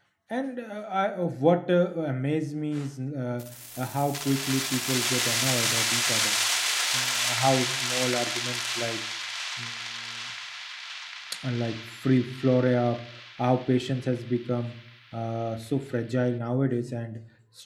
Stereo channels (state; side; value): identical; both; correlation 1.00